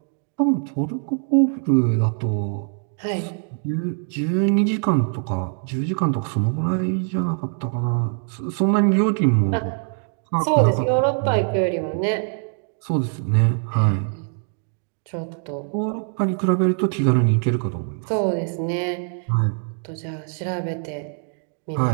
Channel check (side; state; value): left; silent; 55 dB below the other